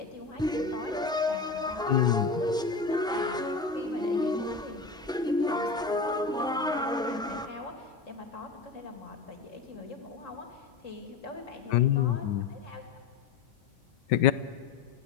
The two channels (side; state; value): right; quieter; 4.5 dB